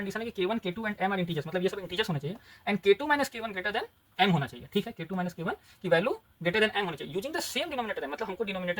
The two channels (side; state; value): both; identical; correlation 1.00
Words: है कि k1, k2 and m are integers, मतलब ये सब इंटीजर्स होने चाहिए, and k2 minus k1 greater then m होना चाहिए। ठीक है, k2 माइनस k1 की वैल्यू ग्रेटर देन m होनी चाहिए यूजिंग द सेम डिनोमिनेटर, मतलब हमको